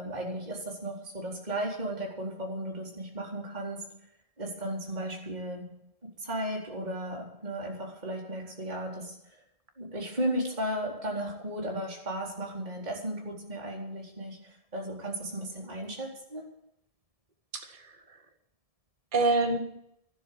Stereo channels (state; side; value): late; left; 1.7 ms